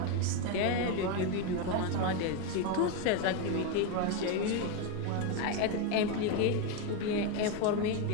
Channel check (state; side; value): different; both; correlation 0.02